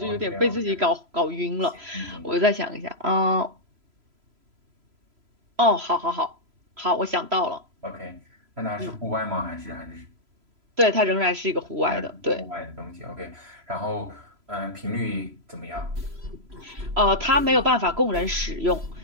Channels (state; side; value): late; left; 3.0 ms